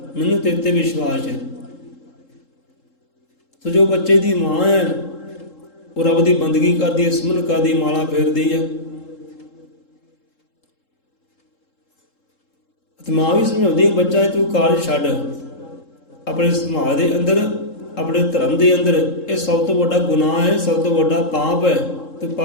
मैनू तेरे ते विश्वास है। तो जो बच्चे की माँ है वो रब की बंदगी करती है, सिमरन करती, माला फेरती है। तो माँ भी समझाती है बच्चा तू कारज छड्ड, अपने समाज के अंदर, अपने धर्म के अंदर, ये सब तो बड़ा गुनाह है, सब तो बड़ा पाप है। तो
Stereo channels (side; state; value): right; late; 3.7 ms